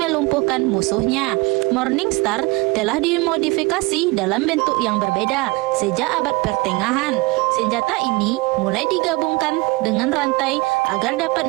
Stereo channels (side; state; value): left; quieter; 24.9 dB